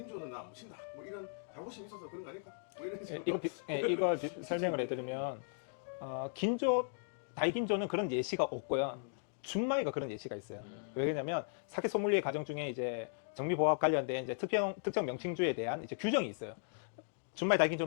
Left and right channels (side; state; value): right; silent; digital silence